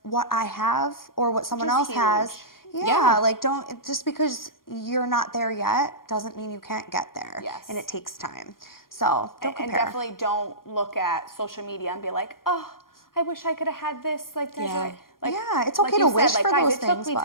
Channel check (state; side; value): late; right; 0.91 ms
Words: what I have or what someone else has. Yeah, like don't, just because you're not there yet doesn't mean you can't get there. Yes. And it takes time. So don't compare. And definitely don't look at social media and be like, oh, I wish I could have had this. Like, Desiree. Like, it's okay to wish for those things. It took me